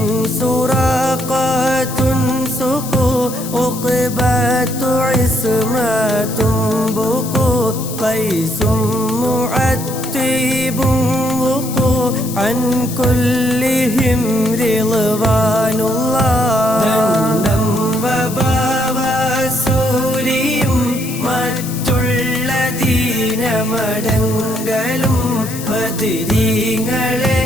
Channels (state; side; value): noise; left; hiss, 11 dB below the sound